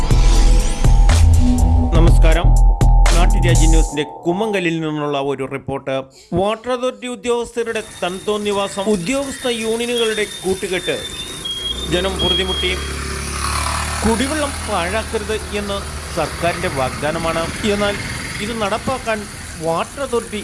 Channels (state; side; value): identical; both; correlation 1.00